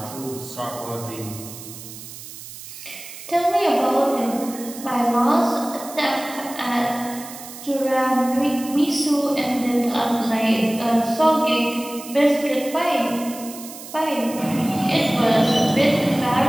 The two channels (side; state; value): right; noise; hiss, 14 dB below the sound